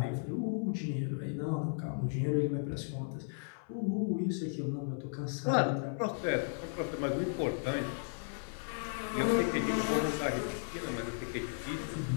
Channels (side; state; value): right; silent; 54 dB below the other